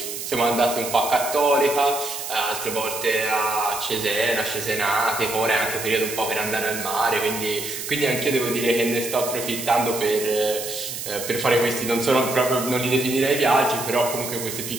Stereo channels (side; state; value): right; noise; hiss, 7 dB below the sound